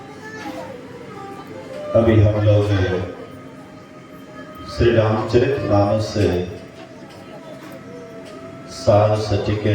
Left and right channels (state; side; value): identical; both; correlation 1.00